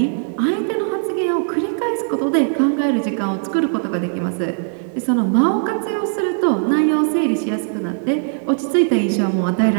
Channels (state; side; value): silent; left; 66 dB below the other